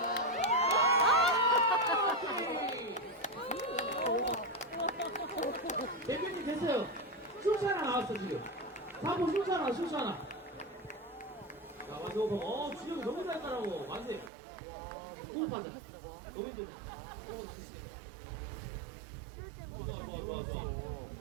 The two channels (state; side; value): drops out; left; at 14.3 s